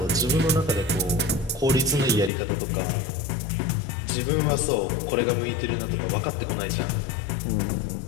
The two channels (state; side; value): drops out; right; at 2.3 s